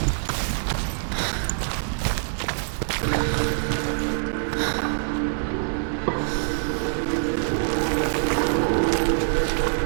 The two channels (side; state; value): left; silent; digital silence